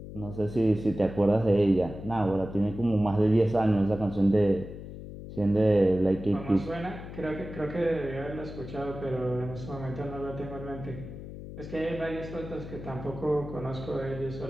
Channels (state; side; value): noise; left; hum, 11 dB below the sound